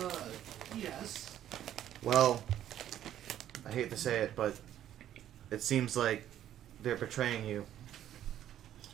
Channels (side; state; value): left; quieter; 11.5 dB